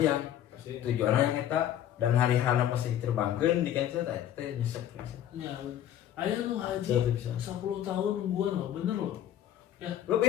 tujuanna yang eta dan hari-hari pasti terbangkeun di cancel teh nyesek ya. Ayo lu haji Jadi bisa. 10 tahun nungguan loh, bener loh. Ya,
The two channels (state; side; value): quieter; right; 11.1 dB